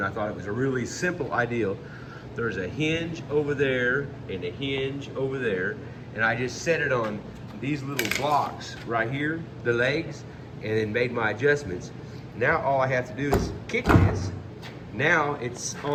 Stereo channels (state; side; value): identical; both; correlation 1.00